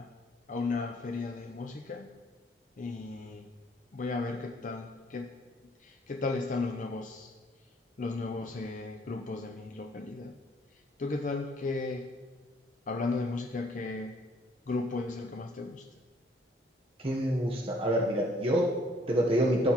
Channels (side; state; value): both; normal; correlation 0.62